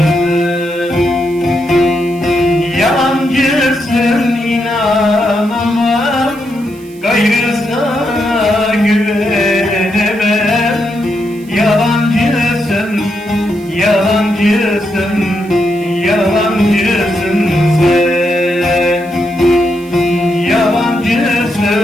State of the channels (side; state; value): right; noise; hiss, 25 dB below the sound